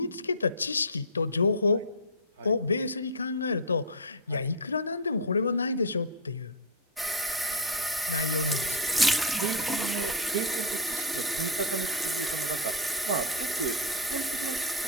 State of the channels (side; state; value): both; normal; correlation 0.01